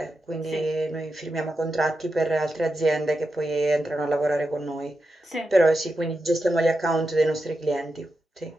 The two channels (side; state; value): both; normal; correlation 0.88